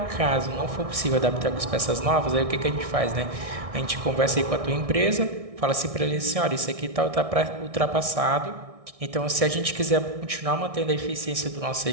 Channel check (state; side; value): late; left; 1.6 ms